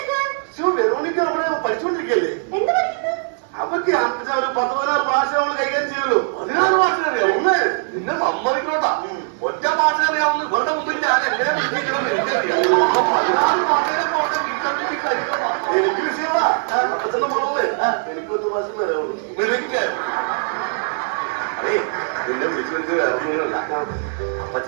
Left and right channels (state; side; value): silent; left; 63 dB below the other